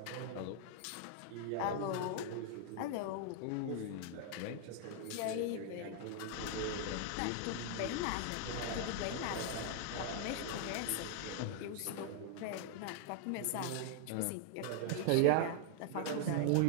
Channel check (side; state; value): both; different; correlation -0.01